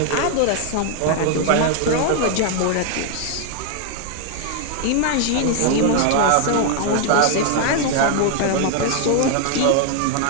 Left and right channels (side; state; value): both; different; correlation 0.00